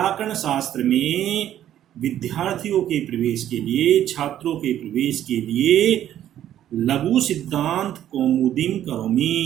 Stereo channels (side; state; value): left; quieter; 11.5 dB